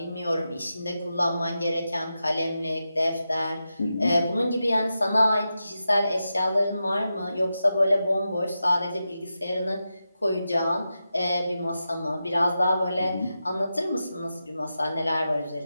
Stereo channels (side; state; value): both; inverted; correlation -0.90